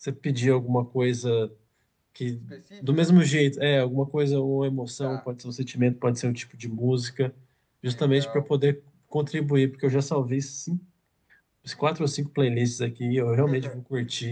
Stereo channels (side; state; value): both; identical; correlation 1.00